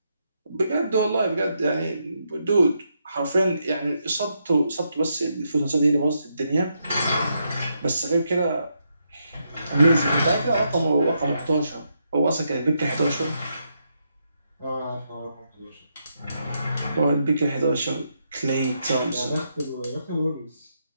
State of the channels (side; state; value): both; inverted; correlation -0.80